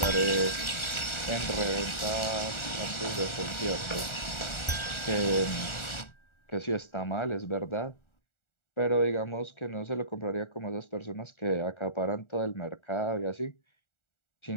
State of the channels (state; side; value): late; right; 1.4 ms